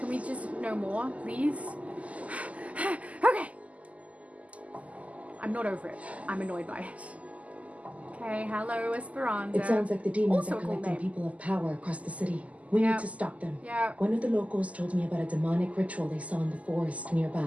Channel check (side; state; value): left; late; 0.070 ms